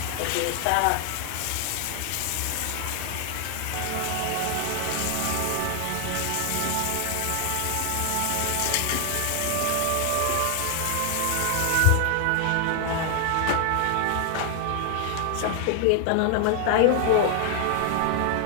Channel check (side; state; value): both; different; correlation 0.00